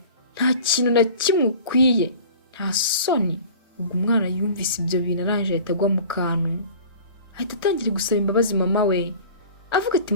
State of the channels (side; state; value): both; inverted; correlation -0.42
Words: nta kintu na kimwe ukwiye, nta soni. Ubwo umwana yumvise ibyo bintu arangije ahita agwa mu kantu, ahita atangira gusaba imbabazi mama we avuga ati